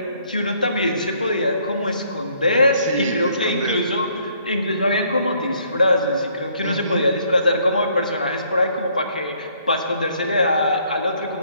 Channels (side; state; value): both; inverted; correlation -0.66